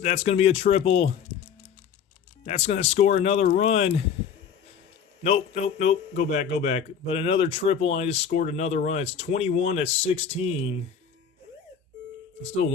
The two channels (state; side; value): quieter; right; 7.4 dB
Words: going to be a triple. That's going to score another run. Nope, nope, nope. Go back, go back. But another triple, and I just scored another run. It's 21-16. Still